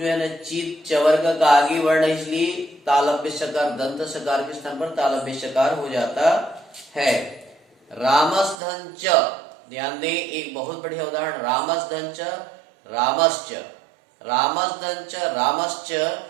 है ना चित चवर्ग का आगे वर्ण, इसलिए तालव्य सकार दंत सकार के स्थान पर तालव्य सकार हो जाता है। रामस धन च, ध्यान दें एक बहुत बढ़िया उदाहरण, रामस धन च रामश्च, रामस धन च रामश्च,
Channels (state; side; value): drops out; left; at 8.6 s